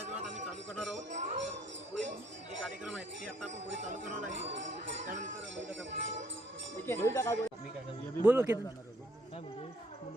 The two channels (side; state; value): both; normal; correlation 0.65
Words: वेळात आम्ही चालू करणार आहोत. तर पुढे जे कार्यक्रम आहेत ते आता आपण पुढे चालू करणार आहे. त्यानंतर बोल